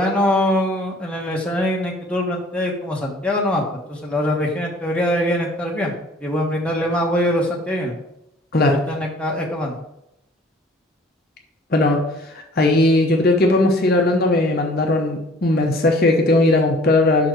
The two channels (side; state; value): both; normal; correlation 0.52